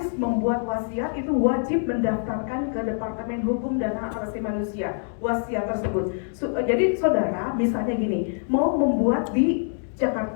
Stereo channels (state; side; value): silent; right; digital silence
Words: membuat wasiat itu wajib mendaftarkan ke Departemen Hukum dan Hak Asasi Manusia wasiat tersebut. Jadi saudara misalnya gini, mau membuat di